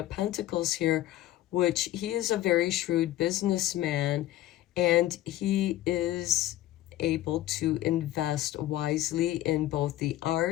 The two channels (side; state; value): right; quieter; 14.6 dB